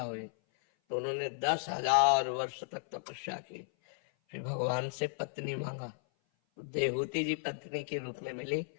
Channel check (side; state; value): right; silent; 55 dB below the other